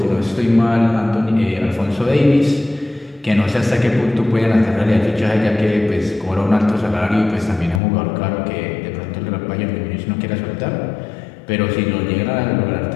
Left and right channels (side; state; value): right; drops out; at 7.8 s